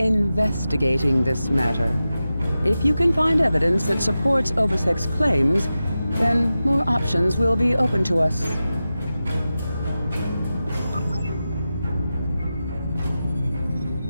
this matter. If you can find evidence that supports Obisek's claims, then more options will be open to us.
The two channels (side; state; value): both; inverted; correlation -0.93